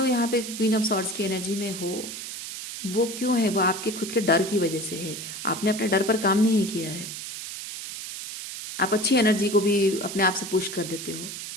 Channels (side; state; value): right; noise; hiss, 8 dB below the sound